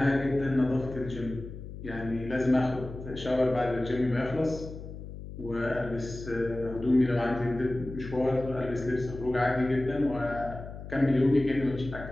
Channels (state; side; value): noise; left; hum, 11 dB below the sound